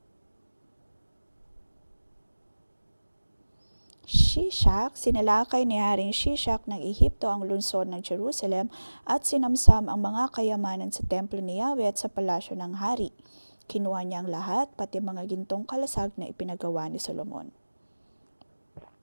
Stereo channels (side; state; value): both; inverted; correlation -1.00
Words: Shishak, sinalakay ni Haring Shishak ng Ehipto ang lungsod ng Jerusalem at sinamsam ang mga kayamanan sa templo ni Yahweh at sa palasyo ng hari. Kinuha niya ang lahat, pati mga gintong kalasag na ipinagawa ni Solomon.